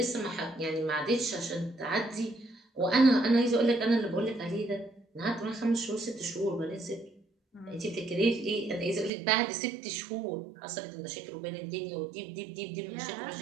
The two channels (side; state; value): left; drops out; at 9.1 s